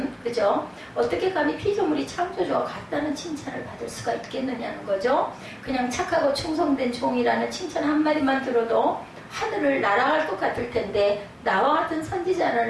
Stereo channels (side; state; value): both; identical; correlation 1.00